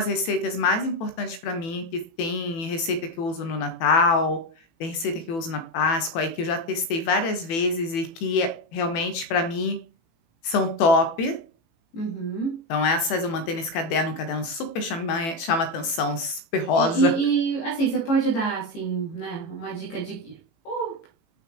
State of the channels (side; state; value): right; late; 18 ms